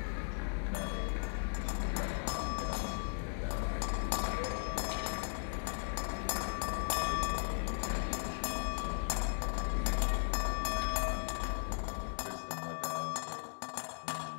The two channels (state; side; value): silent; right; digital silence